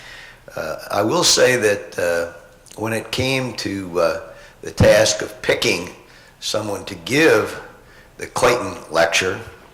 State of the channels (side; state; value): both; identical; correlation 1.00